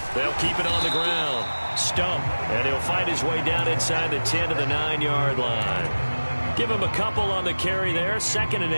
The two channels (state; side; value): inverted; both; correlation -1.00